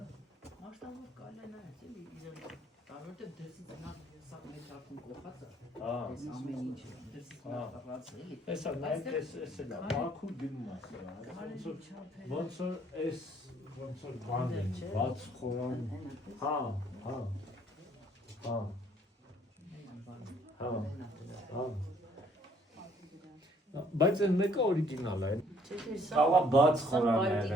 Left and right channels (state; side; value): normal; both; correlation 0.62